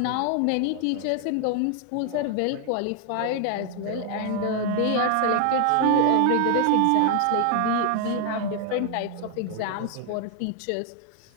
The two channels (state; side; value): different; both; correlation 0.00